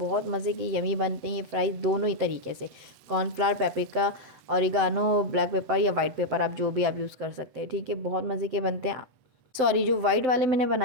मज़े के यमी बनते हैं ये फ्राइज़ दोनों ही तरीके से, cornflour, paprika, oregano, black pepper या वाइट पेपर आप जो भी आप यूज़ कर सकते हैं। ठीक है, बहुत मज़े के बनते हैं। सॉरी, जो वाइट वाले मैंने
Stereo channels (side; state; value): left; late; 7.8 ms